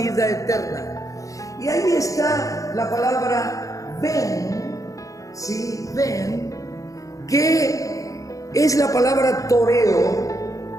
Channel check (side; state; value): right; late; 0.16 ms